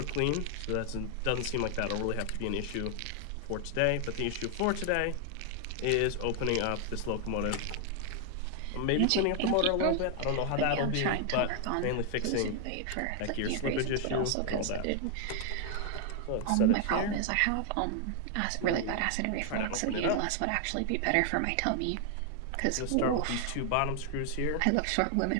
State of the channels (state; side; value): different; both; correlation 0.00